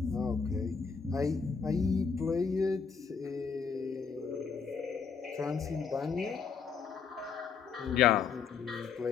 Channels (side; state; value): right; quieter; 5.9 dB